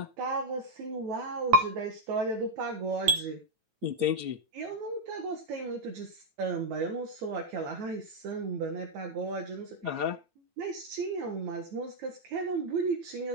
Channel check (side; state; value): left; late; 9.1 ms